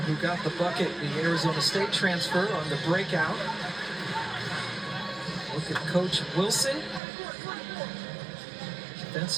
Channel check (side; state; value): left; drops out; at 7.0 s